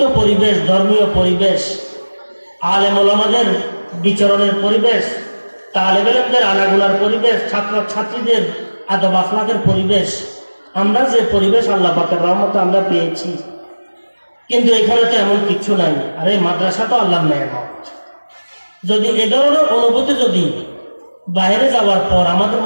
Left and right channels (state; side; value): inverted; both; correlation -1.00